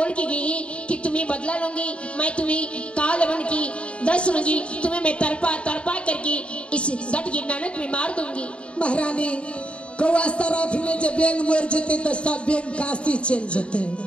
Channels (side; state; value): right; late; 0.059 ms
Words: के गई कि तुम्हें बदला लूंगी, मैं तुम्हें काल बन की दस लूंगी, तुम्हें मैं तरपा तरपा करके इस गट की नानक में मार दूंगी। महारानी कौआ सराफी में जब बेंग मर जते तो सब बेंग काशी चल जते।